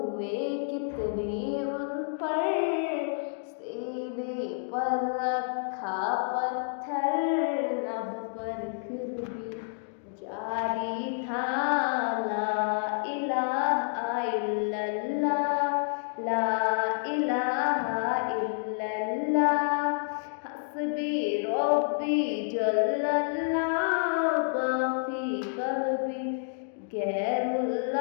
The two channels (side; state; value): right; silent; digital silence